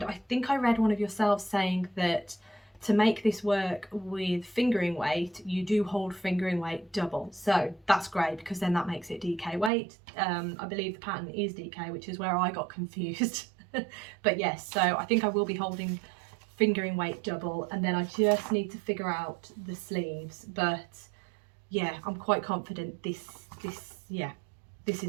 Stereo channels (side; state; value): left; drops out; at 9.7 s